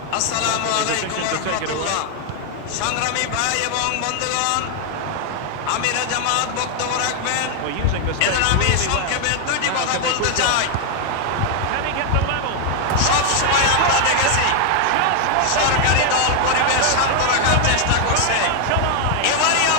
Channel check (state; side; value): different; both; correlation 0.00